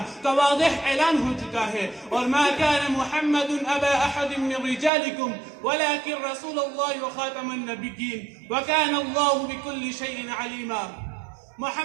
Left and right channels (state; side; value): drops out; left; at 4.9 s